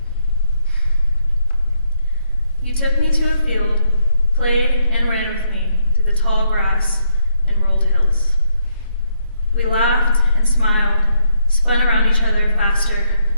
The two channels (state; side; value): inverted; both; correlation -0.75